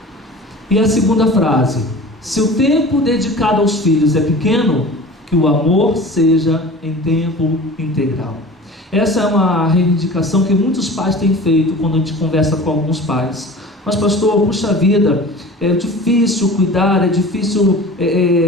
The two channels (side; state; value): both; normal; correlation 0.39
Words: E a segunda frase: se o tempo dedicado aos filhos é pequeno, que o amor seja em tempo integral. Essa é uma reivindicação que muitos pais têm feito quando a gente conversa com alguns pais. Mas pastor, puxa vida, é difícil cuidar, é difícil